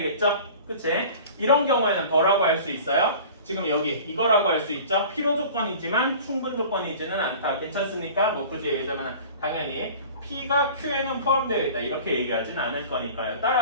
그치? 이런 경우에는 뭐라고 할 수 있어요? 지금 여기 이거라고 할 수 있죠? 필요 조건이지만 충분 조건이지는 않다. 괜찮습니까? 뭐 굳이 얘기하자면 당연히 P가 Q에는 포함되어 있다. 이렇게 얘기하진 않을 거니까요.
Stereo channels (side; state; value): both; inverted; correlation -0.42